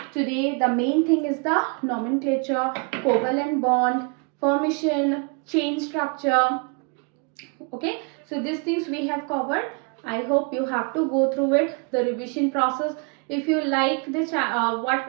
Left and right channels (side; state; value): left; quieter; 34.0 dB